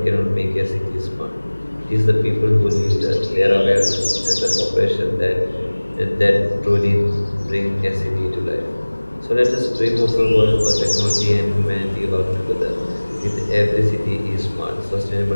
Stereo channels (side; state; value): both; inverted; correlation -1.00